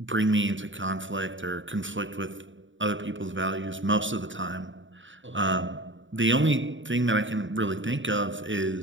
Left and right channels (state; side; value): late; left; 0.55 ms